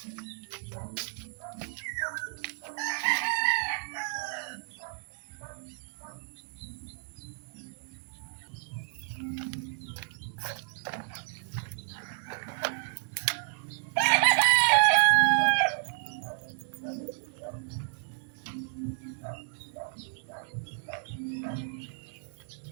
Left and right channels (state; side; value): silent; left; digital silence